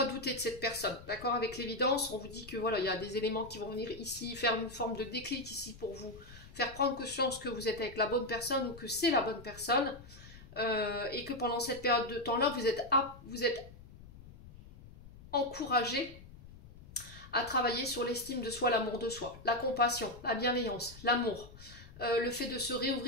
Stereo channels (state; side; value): noise; left; rumble, 18 dB below the sound